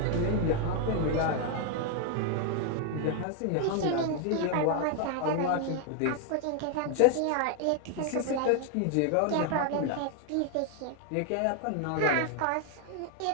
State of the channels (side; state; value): both; different; correlation 0.00